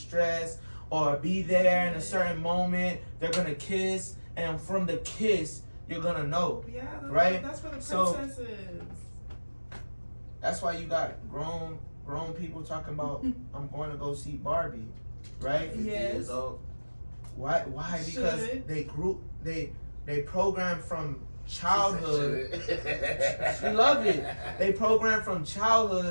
or be there in a certain moment. They're gonna kiss, and from the kiss, you're gonna know. Yeah, right? That's what the So- princess is. That's why you got grown people talking about I'm going to go see Barbie, right? 50 Yes. years old. Why? Because Should. they program from childhood. Shit. She loved it. They program from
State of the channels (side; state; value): both; inverted; correlation -1.00